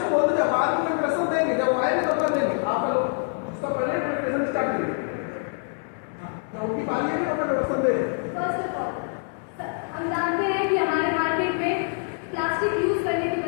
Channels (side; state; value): right; silent; 62 dB below the other